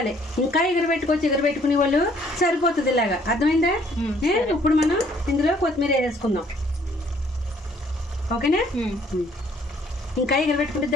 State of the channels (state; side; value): normal; both; correlation 0.62